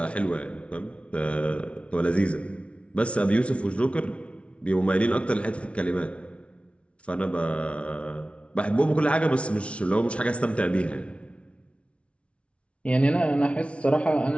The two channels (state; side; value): late; right; 0.061 ms